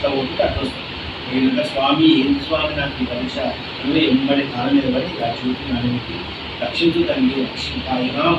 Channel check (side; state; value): both; identical; correlation 1.00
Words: ఒకటి అట్లా వస్తుంది. నేను స్వామి ఏంటి స్వామి నాకు ఈ పరీక్ష నువ్వు ఎంబడి కాలం మీద పడి ఇలా చూసి నాన్నకి రక్షించు తండ్రి,